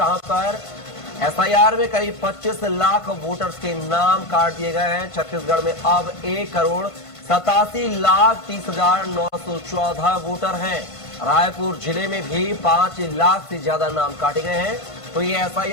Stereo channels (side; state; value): right; late; 1.5 ms